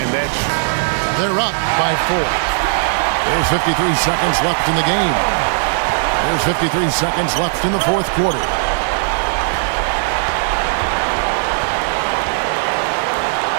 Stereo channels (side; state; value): left; silent; digital silence